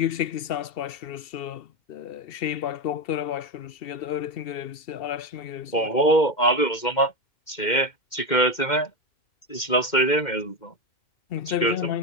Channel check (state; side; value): late; right; 2.1 ms